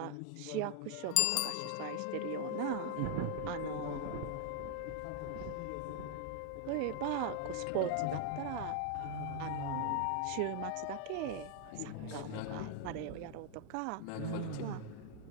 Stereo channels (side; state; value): both; different; correlation 0.00